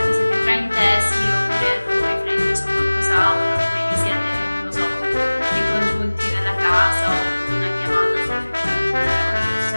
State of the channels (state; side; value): inverted; both; correlation -1.00